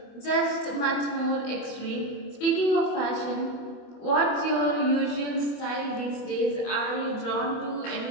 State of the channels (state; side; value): late; right; 24 ms